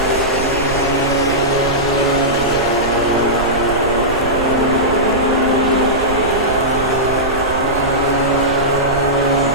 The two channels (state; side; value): noise; right; rumble, 10 dB below the sound